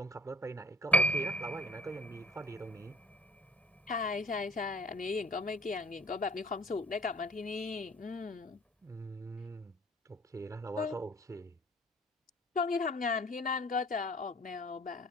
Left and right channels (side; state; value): both; normal; correlation 0.52